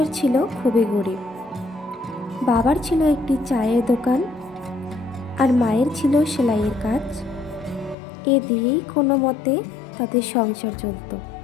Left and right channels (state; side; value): drops out; right; at 8.0 s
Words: ছিল খুবই গরিব। বাবার ছিল একটি চায়ের দোকান আর মায়ের ছিল সেলাইয়ের কাজ। এ দিয়েই কোনো মতে তাদের সংসার চলত।